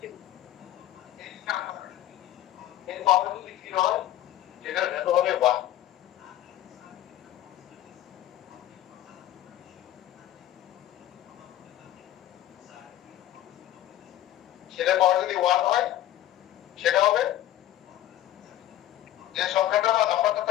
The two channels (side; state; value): right; quieter; 13.1 dB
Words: এই পাওয়ার যদি কি হয় সেটা এত হবে 1, সেটা পাওয়ার যদি 1 হয় সেটা হবে যে সংখ্যাটা বা নাম্বারটা